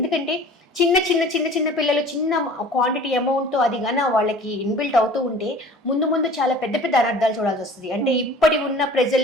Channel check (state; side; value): normal; both; correlation 0.45